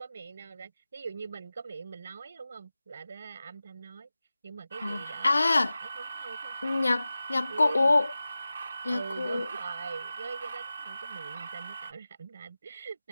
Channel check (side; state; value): both; inverted; correlation -0.95